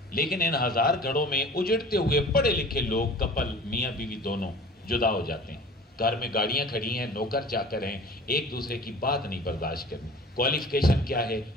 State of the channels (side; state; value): both; normal; correlation 0.43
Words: لیکن ان 1000 گھروں میں اجڑتے ہوئے پڑھے لکھے لوگ، کپل میاں بیوی دونوں جدا ہو جاتے ہیں، گھر میں گاڑیاں کھڑی ہیں، نوکر چاکر ہیں، ایک دوسرے کی بات نہیں برداشت کرنی۔ کوالیفیکیشن کیا ہے؟